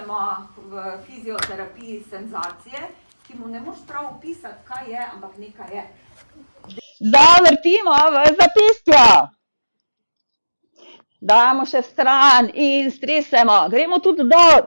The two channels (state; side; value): inverted; both; correlation -1.00